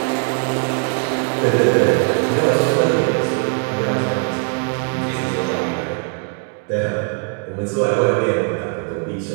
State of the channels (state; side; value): quieter; left; 37.5 dB